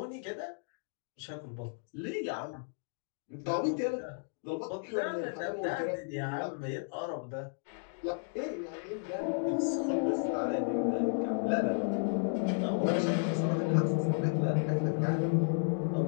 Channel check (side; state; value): right; silent; digital silence